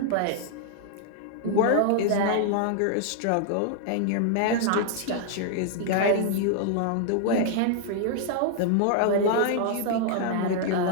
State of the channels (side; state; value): both; different; correlation 0.00